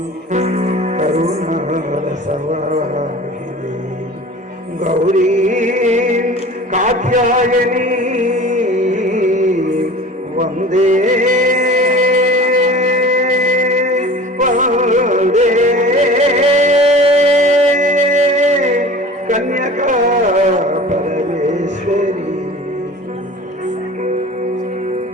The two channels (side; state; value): both; normal; correlation 0.40